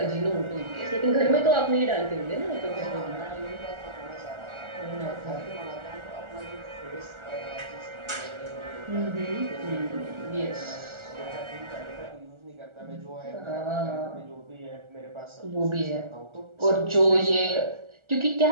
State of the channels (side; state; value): left; late; 1.4 ms